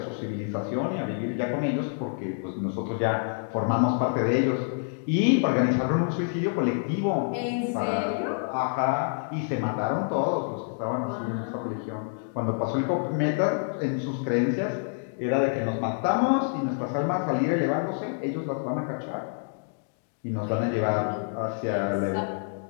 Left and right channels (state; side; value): silent; right; digital silence